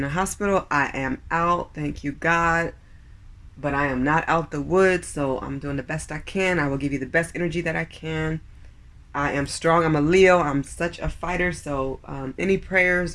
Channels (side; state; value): both; identical; correlation 1.00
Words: a hospital. I am out, thank you God, but I am not out the woods, so I'm doing the best I can. I will give you the best energy that I can. I am strong. I'm a Leo. I'm such a fighter. So any prayers